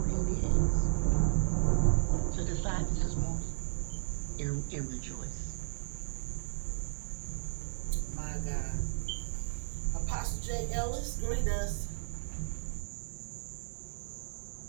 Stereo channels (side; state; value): left; silent; digital silence